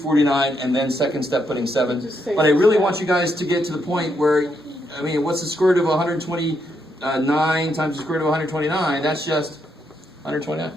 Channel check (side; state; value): both; normal; correlation 0.78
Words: and then second step putting 7. Just say But I really 7. want you guys to get to the point where, what's the square root of 129 times the square root of 129? That's just 129.